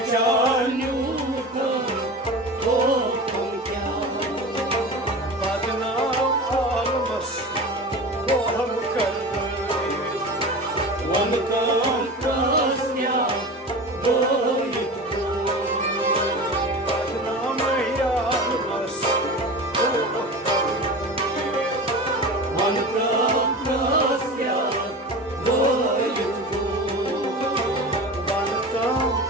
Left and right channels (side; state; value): both; normal; correlation 0.31